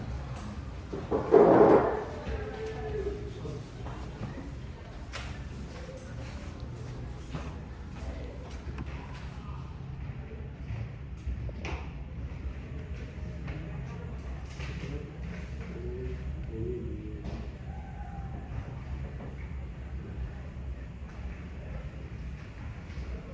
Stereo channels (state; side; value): identical; both; correlation 1.00